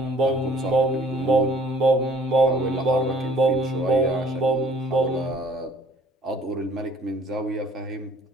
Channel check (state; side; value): normal; both; correlation 0.55